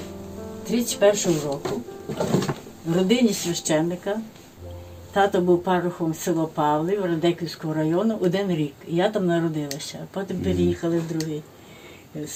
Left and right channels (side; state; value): both; identical; correlation 1.00